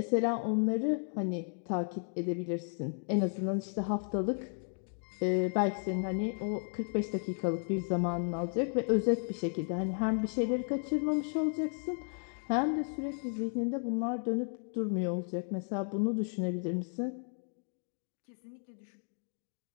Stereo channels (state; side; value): silent; right; 55 dB below the other